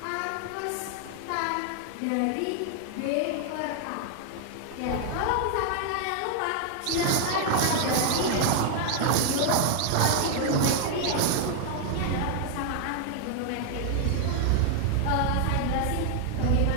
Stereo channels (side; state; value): both; different; correlation 0.00